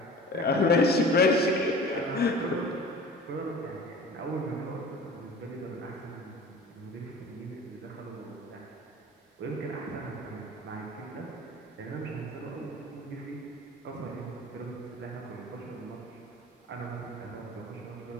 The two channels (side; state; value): both; normal; correlation 0.41